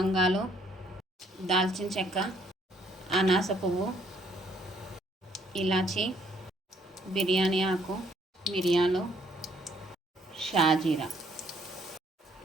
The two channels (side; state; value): both; normal; correlation 0.65